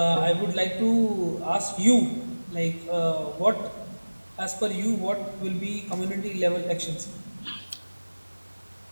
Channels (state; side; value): inverted; both; correlation -1.00